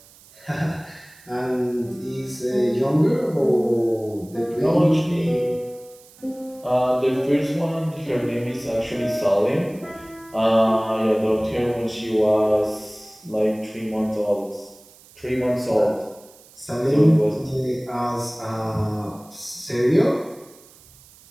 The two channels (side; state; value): right; noise; hiss, 25 dB below the sound